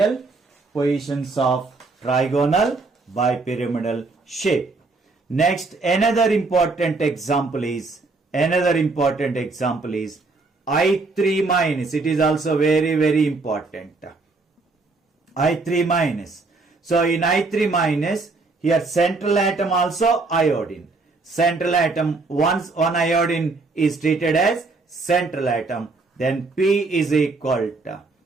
positions of trigonal bipyramidal shape. Next, another important example is I3 minus. It is also very important. I3 minus. So in I3 minus, here central atom also iodine. Central atom, once one iodine is treated as central atom, then P is equal to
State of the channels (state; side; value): quieter; left; 3.7 dB